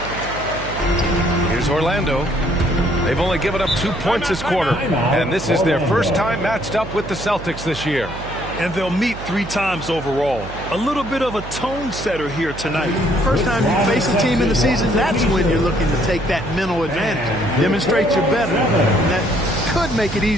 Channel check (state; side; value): noise; right; hum, 11 dB below the sound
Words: Here's Orlando. They've only given up 2 points this quarter. And this is their first time matched up with the Celtics this year. And they'll meet 3 times overall. A little bit of a tone setter here tonight. First time you face a team in the season, that's when you're looking to take that mental advantage. Demonstrate you're better. And that could make it